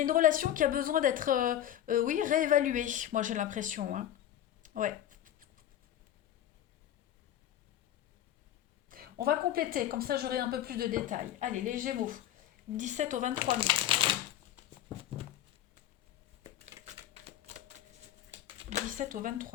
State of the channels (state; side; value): quieter; right; 11.7 dB